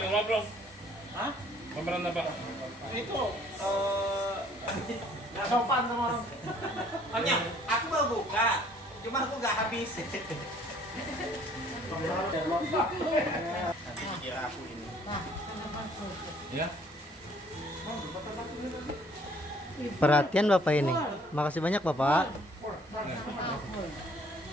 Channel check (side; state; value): both; normal; correlation 0.59